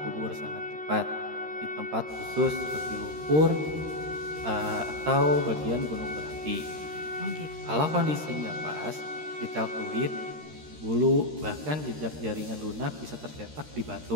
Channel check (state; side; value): late; left; 13 ms